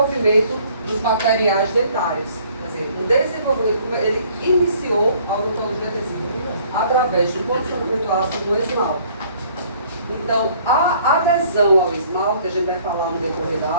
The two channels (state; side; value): inverted; both; correlation -0.58